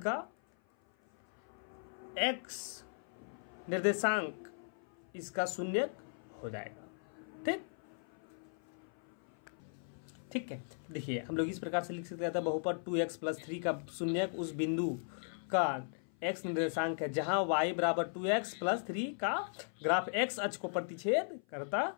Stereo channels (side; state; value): right; silent; 53 dB below the other